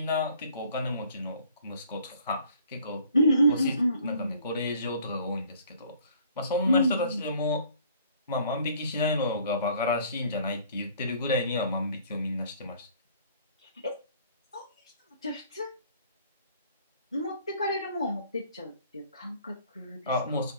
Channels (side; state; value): both; inverted; correlation -0.56